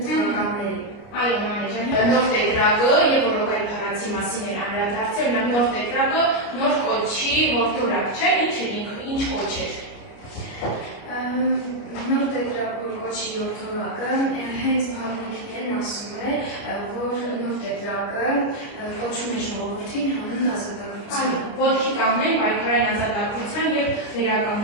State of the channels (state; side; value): late; right; 29 ms